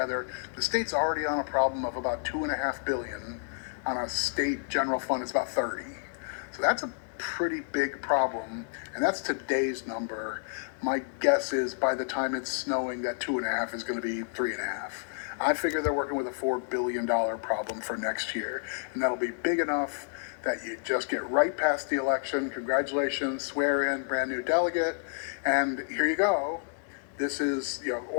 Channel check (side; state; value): right; silent; 58 dB below the other